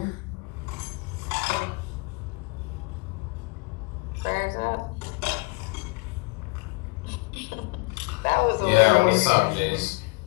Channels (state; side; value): quieter; right; 27.2 dB